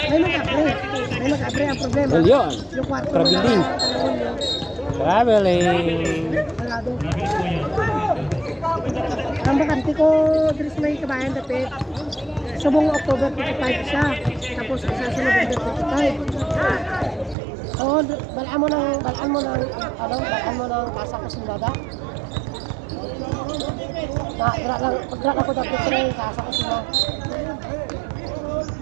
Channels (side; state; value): left; drops out; at 17.4 s